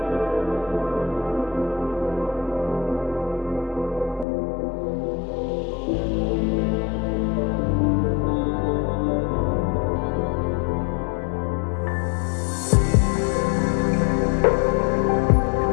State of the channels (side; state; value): right; drops out; at 4.2 s